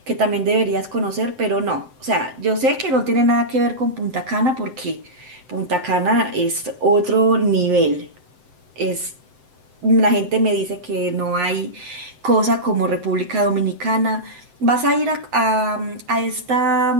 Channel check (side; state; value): left; late; 7.8 ms